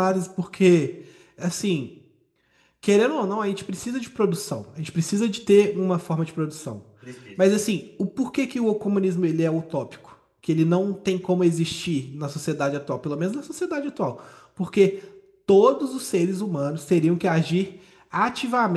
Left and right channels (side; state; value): both; identical; correlation 1.00